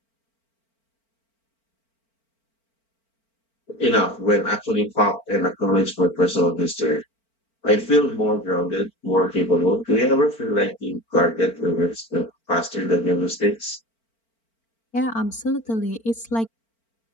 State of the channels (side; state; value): right; late; 4.4 ms